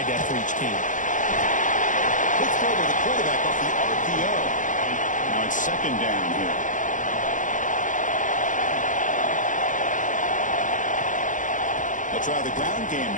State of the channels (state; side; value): late; right; 0.37 ms